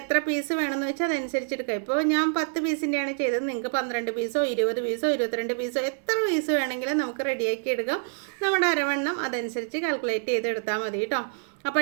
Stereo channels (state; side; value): silent; left; digital silence